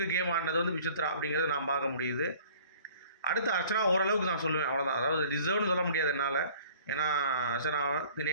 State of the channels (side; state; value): both; inverted; correlation -0.50